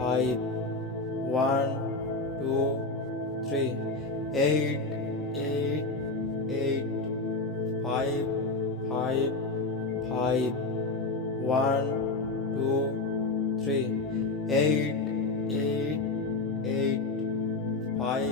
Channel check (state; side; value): quieter; right; 3.3 dB